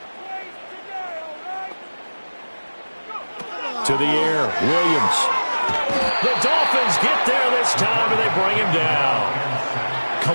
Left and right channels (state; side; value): inverted; both; correlation -1.00